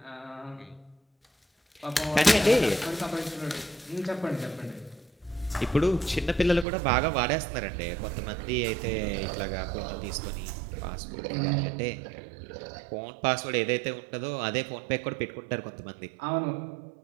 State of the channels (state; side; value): drops out; left; at 6.7 s